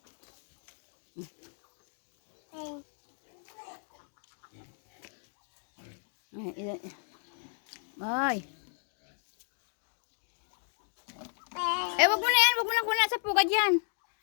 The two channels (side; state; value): right; silent; 55 dB below the other